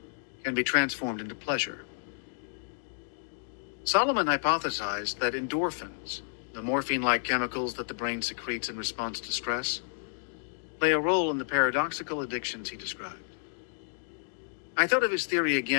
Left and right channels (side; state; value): right; silent; digital silence